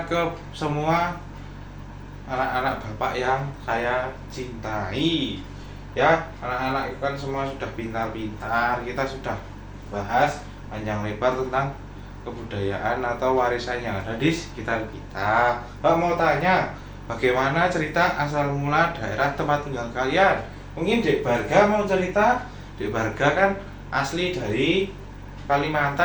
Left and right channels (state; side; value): identical; both; correlation 1.00